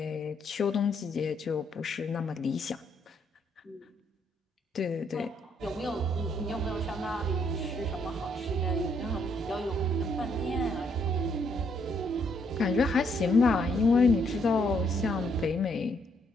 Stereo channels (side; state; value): both; normal; correlation 0.72